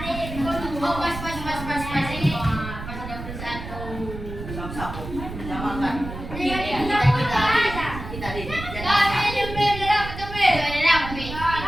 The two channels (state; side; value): noise; right; rumble, 9 dB below the sound